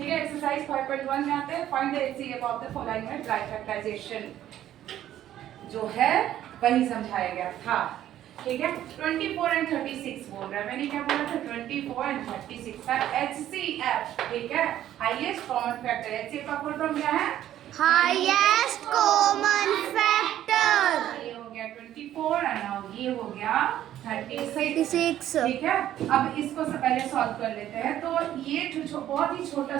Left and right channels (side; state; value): left; quieter; 12.1 dB